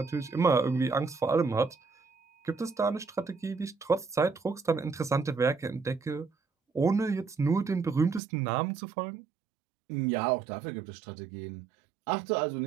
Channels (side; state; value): left; drops out; at 8.2 s